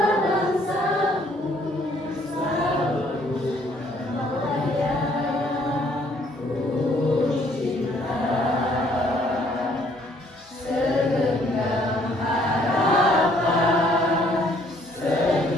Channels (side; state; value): both; normal; correlation 0.64